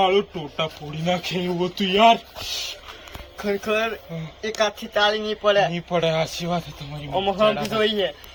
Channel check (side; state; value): both; identical; correlation 1.00